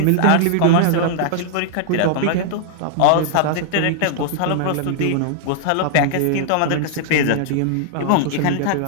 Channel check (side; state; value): both; different; correlation -0.01